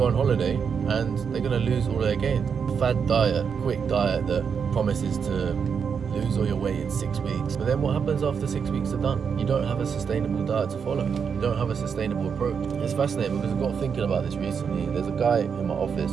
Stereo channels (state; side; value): quieter; left; 6.6 dB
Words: on holiday and they're going to lose all their gains. Fad diet, quick diet that promises to lose all your weight in 6 weeks. But then what happens after 6 weeks are done? You don't have a sustainable diet to follow. You don't have a sustainable approach. It's fascinating because I got thinking about this recently. There's a guy in my office